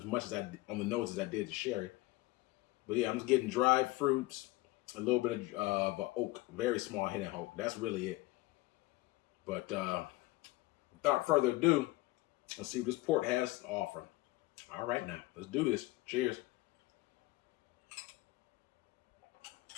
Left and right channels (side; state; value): right; quieter; 19.9 dB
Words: much as on the nose as I did the sherry. But yeah, I'm just getting dried fruits, a little bit of oak, very small hit of oak. That's really it. But without further ado, let's see what this port has to offer. All right, now let's do this. Cheers.